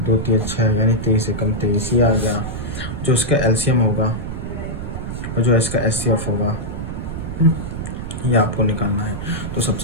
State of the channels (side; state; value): right; noise; rumble, 6 dB below the sound